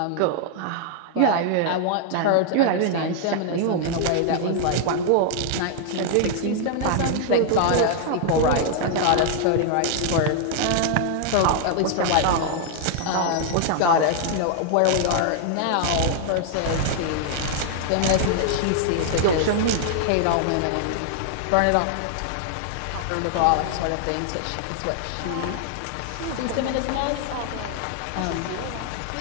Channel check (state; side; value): different; both; correlation 0.00